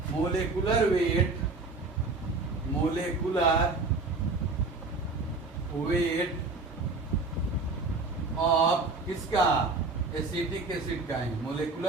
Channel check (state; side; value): quieter; left; 3.7 dB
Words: मोलेकुलर वेट ऑफ किसका, एसिटिक एसिड का है।